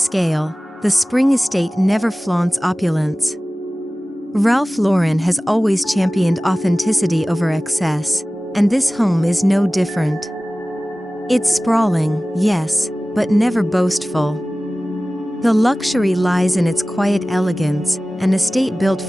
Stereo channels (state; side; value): normal; both; correlation 0.97